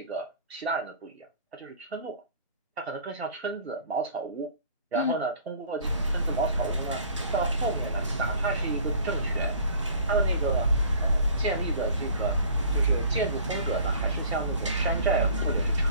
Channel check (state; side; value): inverted; both; correlation -0.49